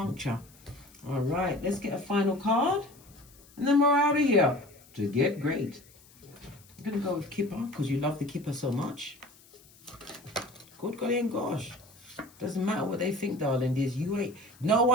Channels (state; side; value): noise; left; hiss, 26 dB below the sound